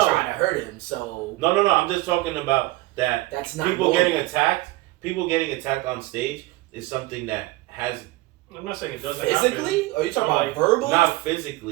to hurt him. So No. I'm just talking about that. That's not people normal. getting attacked. People getting attacked on stage is something that has. I'm not saying it doesn't physically, or are you talking about verbally? Not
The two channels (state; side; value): quieter; left; 19.4 dB